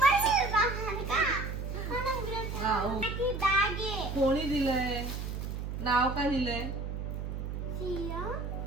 जाणार का? हा, हो. की बॅग आहे. कोणी दिलंय? नाव काय दिलंय? सिया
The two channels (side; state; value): right; noise; hum, 5 dB below the sound